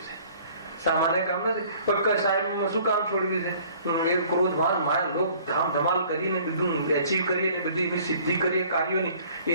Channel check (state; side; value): inverted; both; correlation -0.54